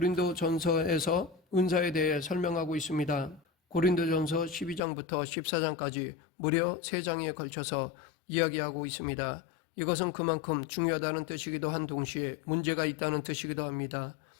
전서에서 은사에 대해 설명하고 있습니다. 고린도 전서 12장부터 14장까지 무려 3장에 걸쳐서 이야기하고 있습니다. 이것은 그만큼 중요하다는 뜻이기도 한 동시에 문제가 있다는 뜻이기도 합니다.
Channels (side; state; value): right; drops out; at 4.8 s